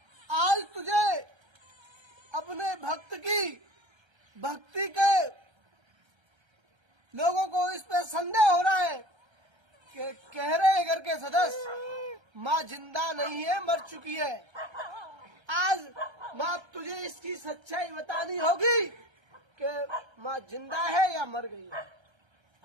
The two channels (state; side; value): late; left; 1.3 ms